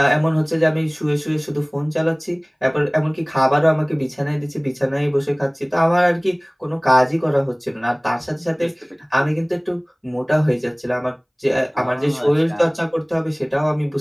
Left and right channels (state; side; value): identical; both; correlation 1.00